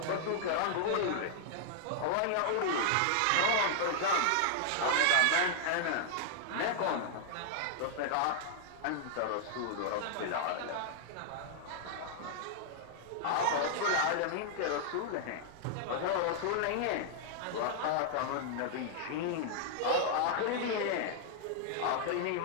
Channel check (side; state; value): both; different; correlation -0.01